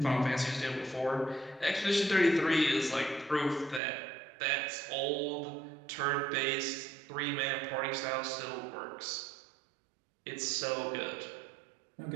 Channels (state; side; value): drops out; left; at 3.8 s